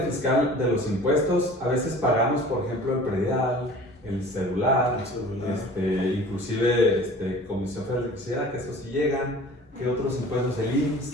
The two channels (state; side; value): normal; both; correlation 0.44